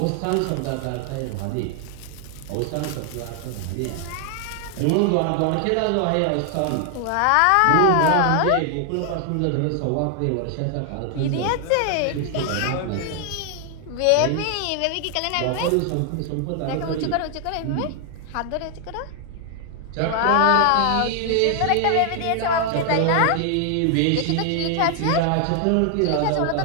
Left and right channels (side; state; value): both; different; correlation 0.00